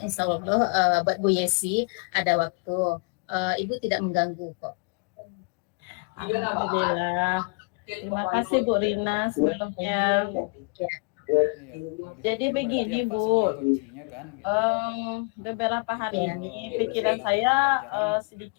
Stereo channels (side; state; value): right; quieter; 33.7 dB